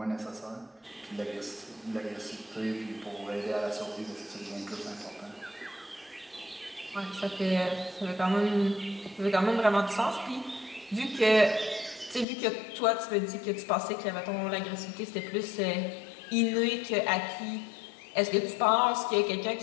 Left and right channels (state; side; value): drops out; right; at 12.2 s